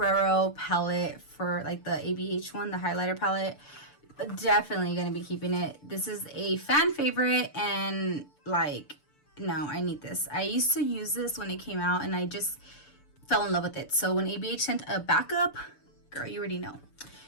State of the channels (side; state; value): right; late; 6.8 ms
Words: palette for like the ABH one, the highlighter palette, definitely gonna be keeping it. This is a fan favorite, and like, no, I need this. I used to use this when it came out, and I just fell in love with it. So when ABH sent a backup, girl, you already know.